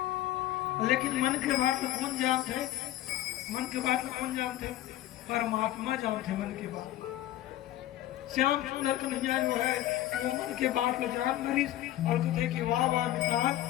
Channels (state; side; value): quieter; right; 14.1 dB